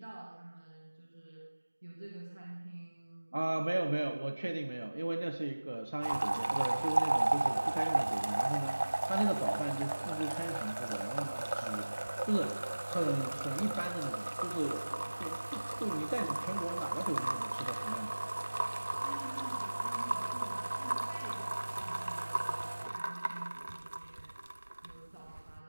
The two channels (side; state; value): both; inverted; correlation -1.00